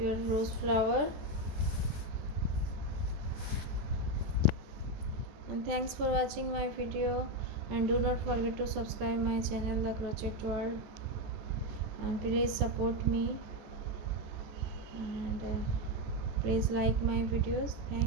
rose flower. And thanks for watching my video, and do not forget to subscribe my channel The Crochet World, and please support me and please like my videos.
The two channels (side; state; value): left; late; 14 ms